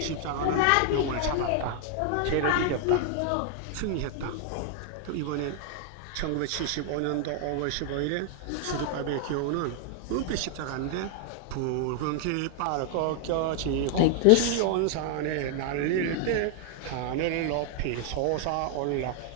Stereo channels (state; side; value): different; both; correlation 0.00